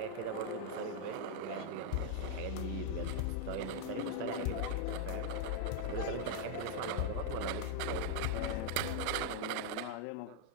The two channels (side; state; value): both; different; correlation 0.00